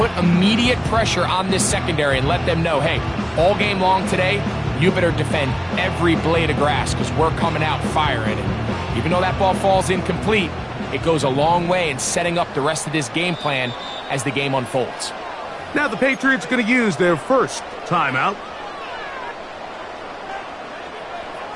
immediate pressure on this secondary and let them know, hey, all game long today, you better defend every blade of grass because we're coming out firing. And even though that ball falls incomplete, it goes a long way in setting up the rest of this game plan as the game unfolds. Now the Patriots going to use their first timeout.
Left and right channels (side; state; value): both; identical; correlation 1.00